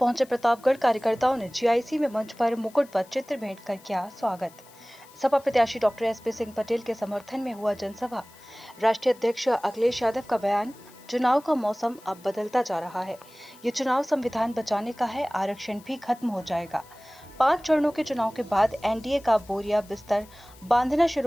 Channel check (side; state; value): left; noise; hiss, 25 dB below the sound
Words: प्रतापगढ़। कार्यकर्ताओं ने जीआईसी में मंच पर मुकुट पर चित्र भेंट कर किया स्वागत। सपा प्रत्याशी डॉक्टर एसपी सिंह पटेल के समर्थन में हुआ जनसभा। राष्ट्रीय अध्यक्ष अखिलेश यादव का बयान, चुनाव का मौसम अब बदलता जा रहा है। ये चुनाव संविधान बचाने का है, आरक्षण भी खत्म हो जाएगा। 5 चरणों के चुनाव के बाद एनडीए का बोरिया बिस्तर बांधना